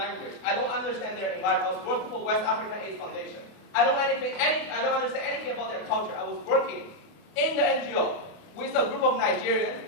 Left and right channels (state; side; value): late; right; 28 ms